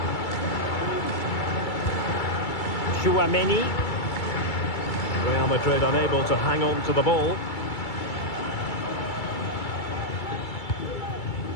Chouameni. Real Madrid unable to hang on to the ball.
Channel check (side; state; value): right; late; 2.3 ms